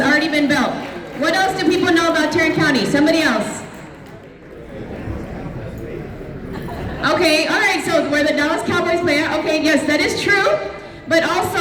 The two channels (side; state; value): both; identical; correlation 1.00